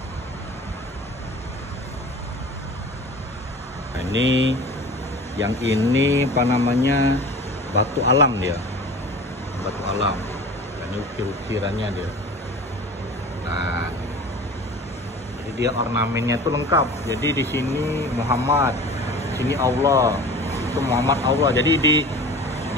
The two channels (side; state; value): both; normal; correlation 0.39